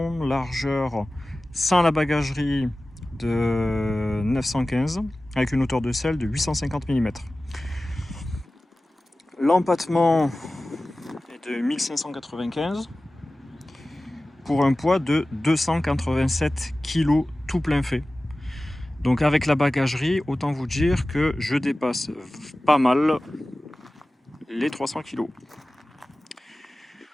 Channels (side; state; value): both; normal; correlation 0.96